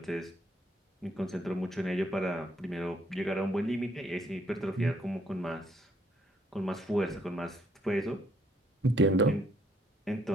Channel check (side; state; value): both; normal; correlation 0.69